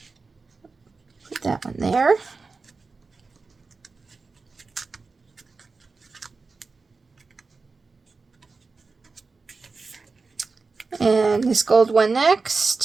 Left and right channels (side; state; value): left; quieter; 4.2 dB